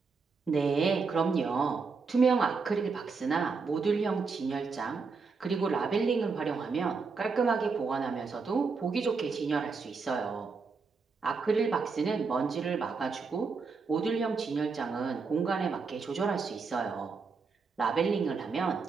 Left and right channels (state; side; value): quieter; left; 4.8 dB